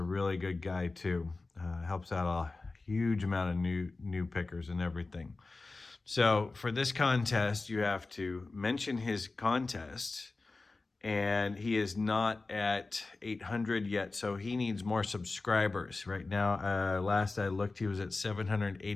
really good guy too. Helps out a huge amount of new pickers and everything. So for this contest, you have to mention his contest, and he is not at 800 yet, so he needs more subscribers. Right now, last I looked, he was at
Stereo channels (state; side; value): quieter; right; 3.6 dB